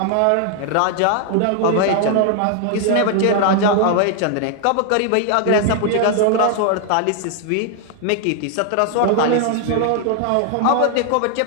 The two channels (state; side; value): different; both; correlation 0.00